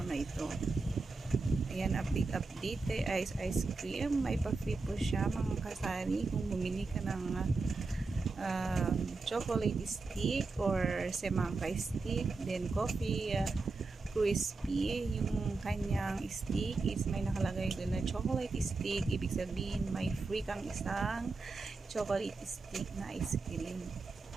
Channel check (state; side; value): quieter; left; 3.8 dB